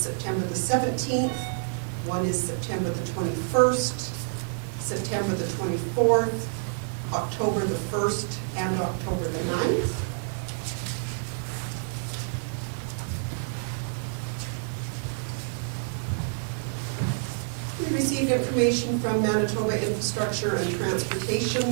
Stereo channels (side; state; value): left; silent; digital silence